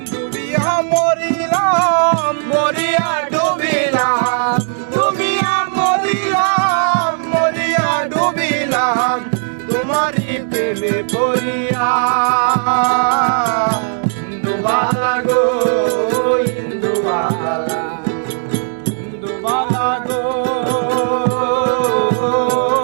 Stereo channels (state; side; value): silent; left; digital silence